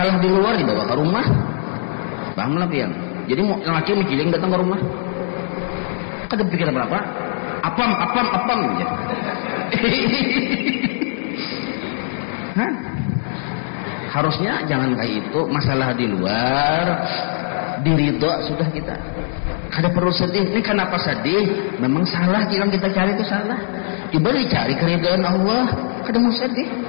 di luar dibawa ke rumah paham lah pian jadi laki mikirin datang ke rumah kada pikir apa apam aja. Harusnya jangan kayak itu masalah di luar diridho sudah kita kada perlu sedih. Ini kenapa sedih? Memang salah yang kita cari itu salah. Coba dicari keridhaan Allah, kada mau sedih.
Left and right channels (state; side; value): silent; right; digital silence